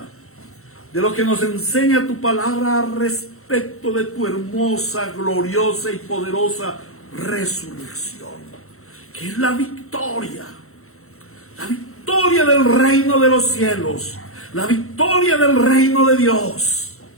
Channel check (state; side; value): late; right; 0.63 ms